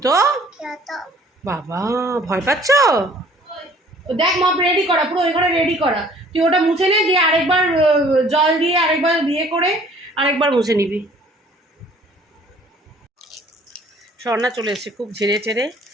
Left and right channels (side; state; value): both; normal; correlation 0.55